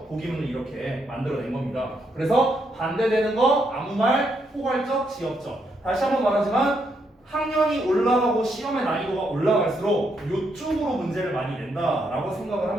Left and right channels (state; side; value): normal; both; correlation 0.77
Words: 보기문을 이렇게 만들어낸 겁니다. 그래서 반대되는 거, 아무 말, 포괄적, 지역적. 다시 한번 말하지만 학년이 올라가고 시험의 난이도가 올라갈수록 이쪽으로 문제를 많이 낸다라고 생각을